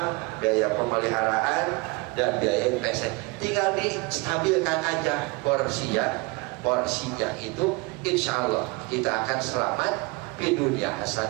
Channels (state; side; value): quieter; left; 26.2 dB